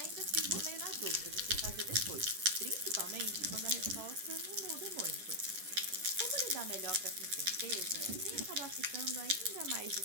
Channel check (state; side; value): late; left; 10 ms